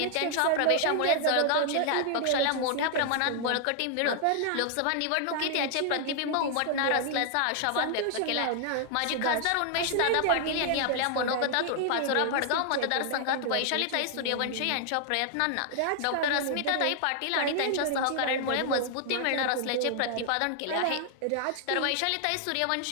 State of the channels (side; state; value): both; different; correlation 0.00